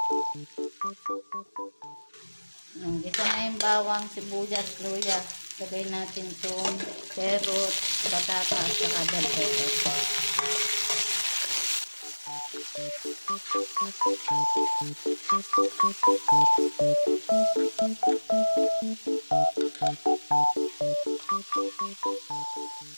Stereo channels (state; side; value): inverted; both; correlation -1.00